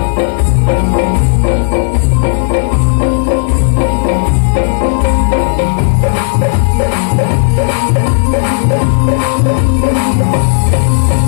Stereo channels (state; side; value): silent; right; digital silence